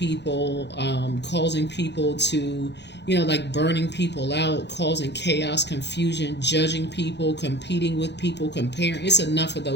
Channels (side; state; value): right; late; 0.50 ms